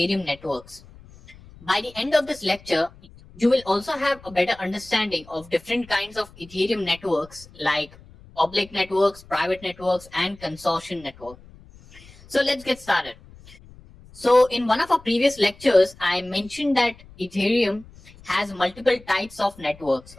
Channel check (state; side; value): noise; left; rumble, 23 dB below the sound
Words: networks. By the end of this lecture, you will also have a better understanding of different kinds of Ethereum networks like public networks, private networks, and consortium network. So let's get started. So in one of our previous lectures, I mentioned that Ethereum has multiple types of networks,